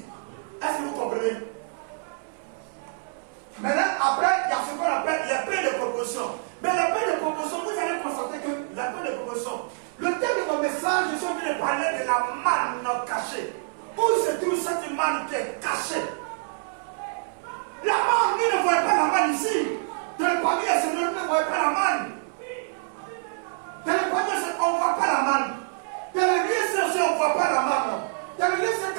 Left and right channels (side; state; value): left; silent; 61 dB below the other